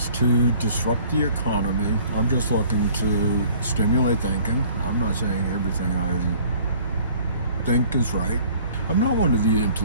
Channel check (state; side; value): inverted; both; correlation -0.53